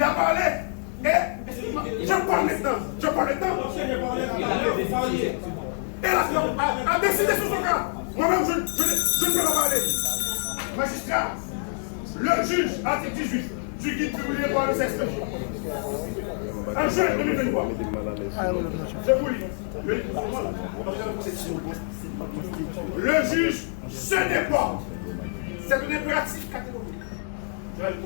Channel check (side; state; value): right; silent; 59 dB below the other